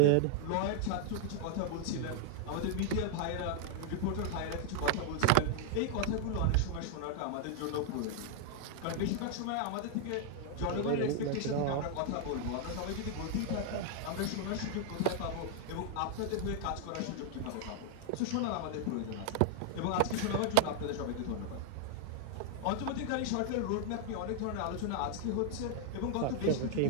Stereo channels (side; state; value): both; different; correlation 0.00